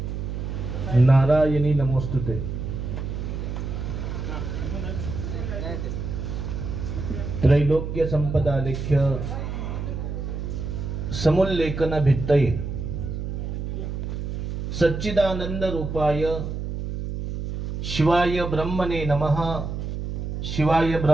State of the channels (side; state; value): right; noise; hum, 4 dB below the sound